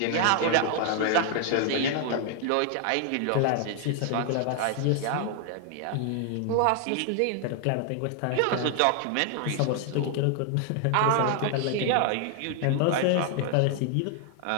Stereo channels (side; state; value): both; different; correlation 0.00